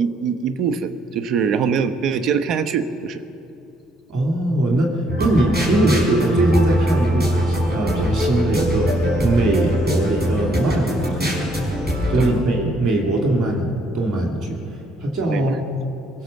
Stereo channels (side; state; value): both; normal; correlation 0.70